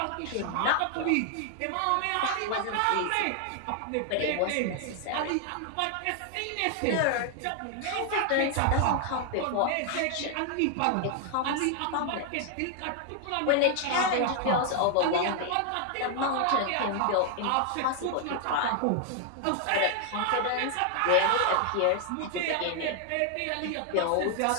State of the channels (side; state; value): both; different; correlation 0.00